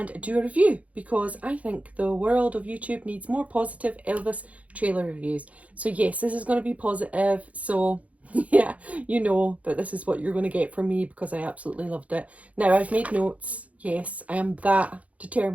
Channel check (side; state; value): left; late; 0.067 ms